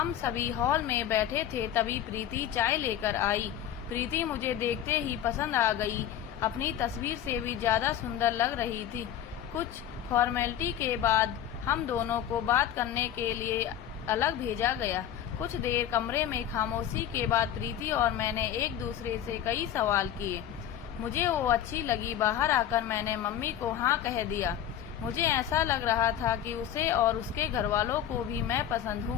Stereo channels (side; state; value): right; quieter; 10.5 dB